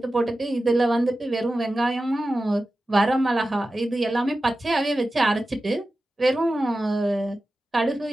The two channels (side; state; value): both; normal; correlation 0.94